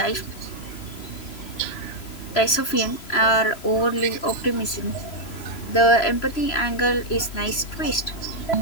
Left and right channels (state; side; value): late; right; 3.0 ms